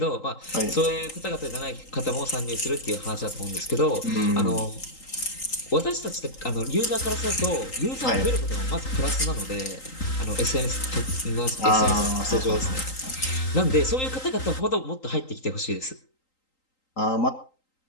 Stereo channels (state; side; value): late; right; 3.8 ms